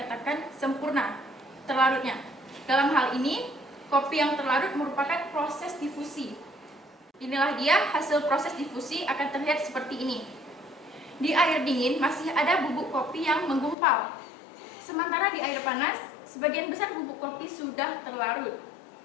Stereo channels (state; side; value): drops out; right; at 13.8 s